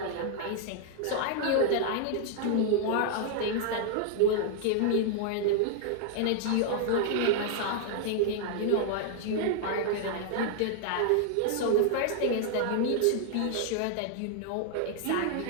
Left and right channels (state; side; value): different; both; correlation -0.01